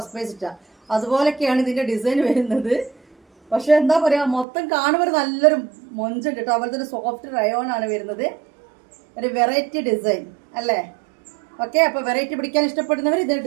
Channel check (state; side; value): drops out; left; at 4.5 s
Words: പ്രൈസ് ഇട്ട. അതുപോലൊക്കെയാണ് ഇതിന്റെ ഡിസൈൻ വരുന്നത്. പക്ഷെ എന്താ പറയാ, മൊത്തം കാണുമ്പോൾ നല്ലൊരു മൊഞ്ചുണ്ട് കേട്ടോ. അതുപോലെ തന്നെ സോഫ്റ്റ് റയോൺ ആണ് വരുന്നത്. ഒരു വെറൈറ്റി ഡിസൈൻ അല്ലേ? ഓക്കെ, അപ്പൊ വെറൈറ്റി പിടിക്കാൻ ഇഷ്ടപ്പെടുന്നവർ ഇത്